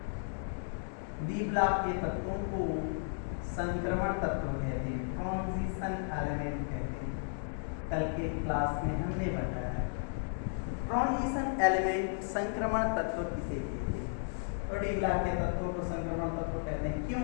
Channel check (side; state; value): right; silent; digital silence